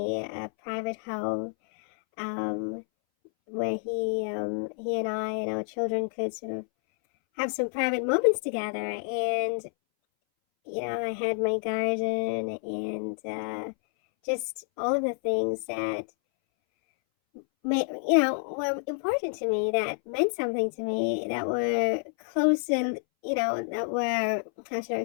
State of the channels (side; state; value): right; silent; 59 dB below the other